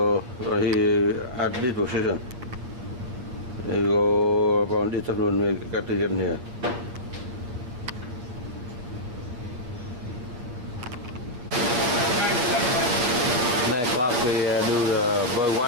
he at this position. We go about this afternoon. We got to get in here. Next class we do the bird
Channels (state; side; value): late; left; 8.3 ms